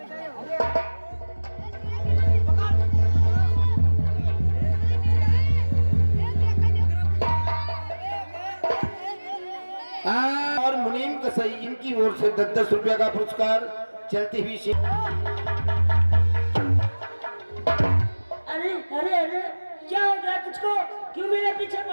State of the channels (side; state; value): both; inverted; correlation -1.00